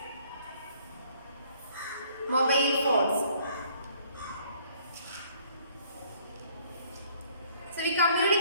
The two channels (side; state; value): both; inverted; correlation -0.60